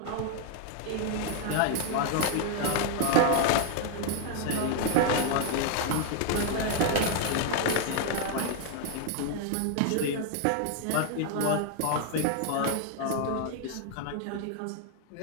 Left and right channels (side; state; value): both; different; correlation 0.00